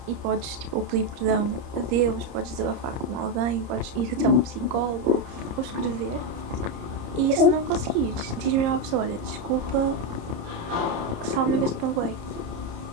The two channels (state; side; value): late; left; 30 ms